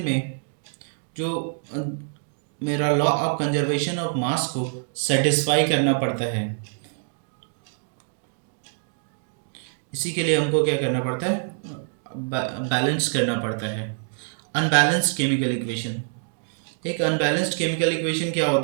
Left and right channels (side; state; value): left; silent; digital silence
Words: में जो मेरा law of conservation of mass को सेटिस्फाई करना पड़ता है, इसी के लिए हमको क्या करना पड़ता है, बैलेंस करना पड़ता है। अनबैलेंस्ड केमिकल इक्वेशन, एक अनबैलेंस्ड केमिकल इक्वेशन क्या